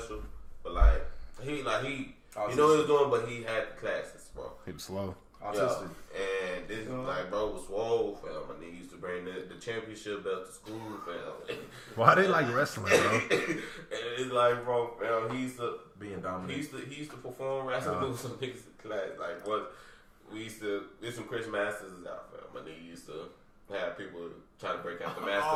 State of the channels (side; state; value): both; identical; correlation 1.00